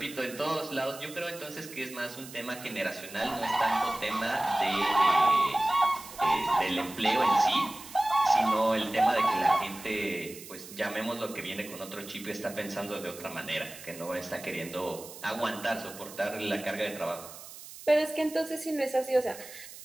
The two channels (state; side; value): noise; right; hiss, 15 dB below the sound